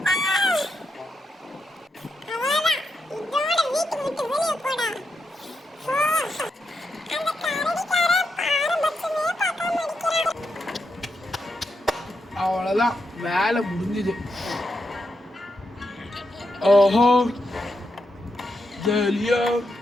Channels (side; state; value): both; normal; correlation 0.84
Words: அவ்வளவுதான், வேலை முடிஞ்சுது. ஓஹோ ஜலியா